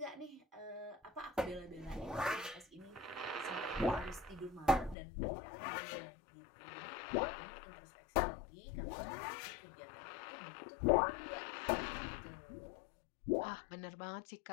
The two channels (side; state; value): right; drops out; at 5.0 s